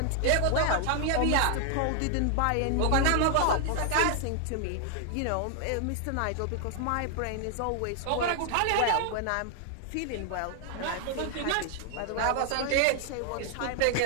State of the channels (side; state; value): both; different; correlation 0.00